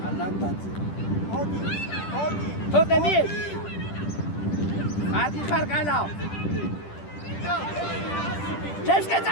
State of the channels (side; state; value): right; late; 10 ms